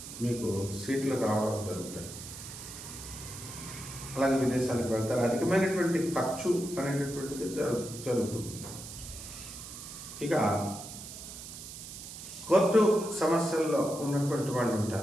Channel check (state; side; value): noise; right; hiss, 11 dB below the sound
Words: మీకు సీట్లు రావడం జరుగుతాయి. అలాగే విదేశాలకు వెళ్తారు. అధికమైనటువంటి ఖర్చు అనేటటువంటిది జరుగుతుంది. ఇక కోర్టు సమస్యల్లో ఉన్నటువంటి వాళ్ళు